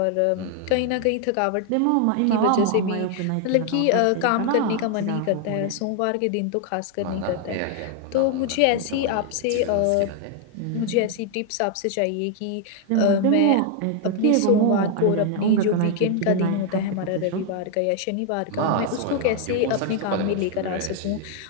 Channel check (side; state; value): both; different; correlation 0.00